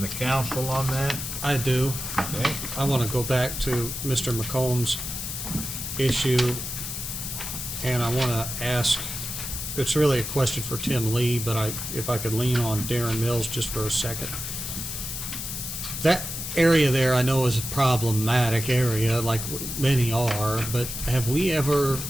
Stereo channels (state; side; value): noise; left; hiss, 6 dB below the sound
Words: the council on that? I do. Okay, I want to go back to Mr. McComb's issue, and I want to ask, it's really a question for Tim Lee, but if I could lean on Darren Mills just for a second. That area there I know is a problematic area, like many are, but have we ever,